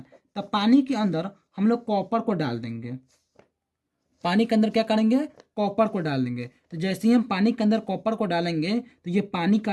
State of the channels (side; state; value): both; identical; correlation 1.00